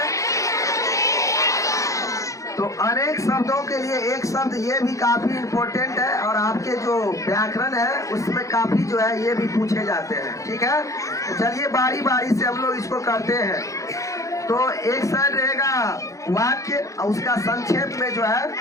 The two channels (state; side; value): late; right; 0.15 ms